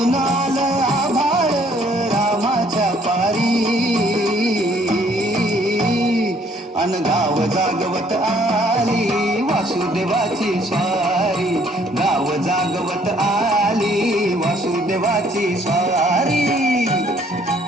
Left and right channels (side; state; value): both; normal; correlation 0.63